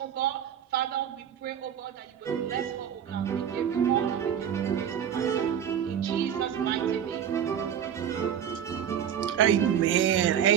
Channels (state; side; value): quieter; left; 9.0 dB